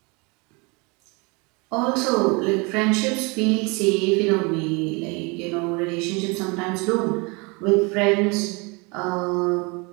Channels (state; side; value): quieter; left; 28.9 dB